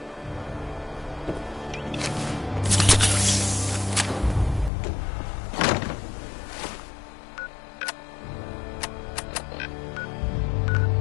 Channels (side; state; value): right; drops out; at 4.7 s